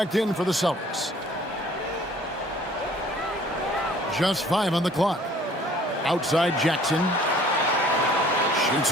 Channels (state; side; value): normal; both; correlation 0.54